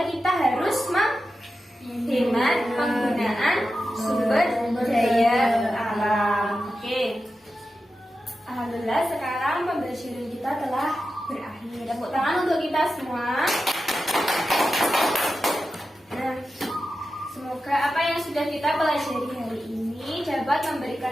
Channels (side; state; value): both; normal; correlation 0.91